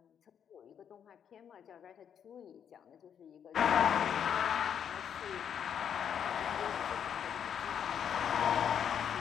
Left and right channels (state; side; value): quieter; right; 8.3 dB